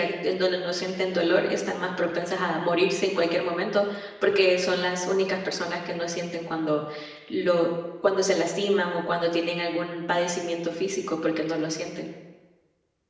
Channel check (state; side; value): identical; both; correlation 1.00